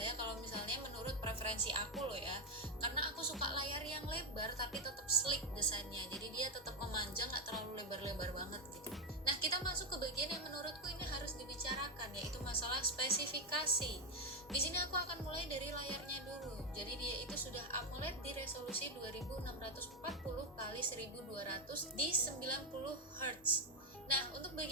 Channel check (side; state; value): both; normal; correlation 0.07